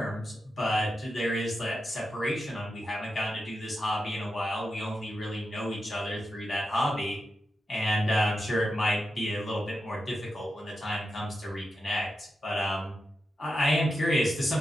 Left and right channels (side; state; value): both; normal; correlation 0.88